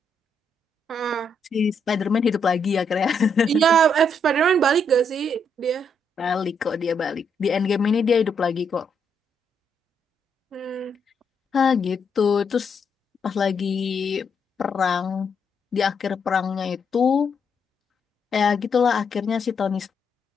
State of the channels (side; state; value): both; normal; correlation 0.76